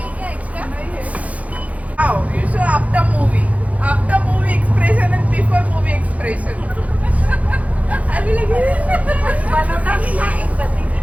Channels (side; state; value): left; late; 0.068 ms